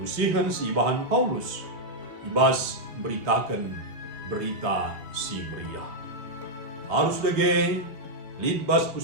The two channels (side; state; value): left; late; 3.5 ms